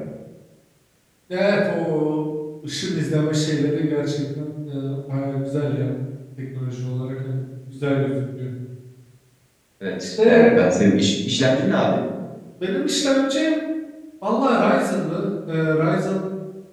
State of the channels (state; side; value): identical; both; correlation 1.00